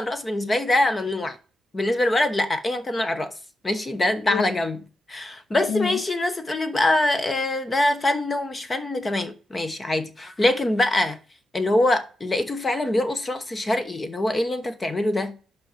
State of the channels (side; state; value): both; normal; correlation 0.88